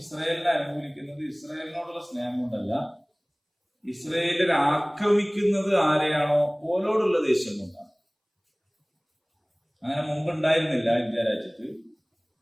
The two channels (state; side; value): identical; both; correlation 1.00